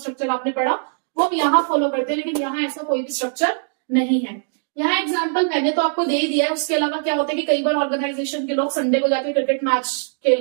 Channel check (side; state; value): left; silent; digital silence